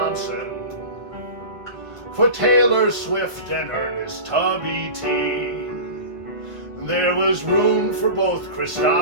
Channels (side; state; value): left; late; 1.5 ms